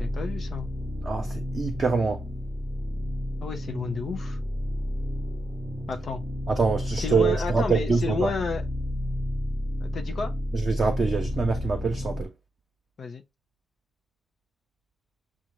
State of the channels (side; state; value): both; normal; correlation 0.85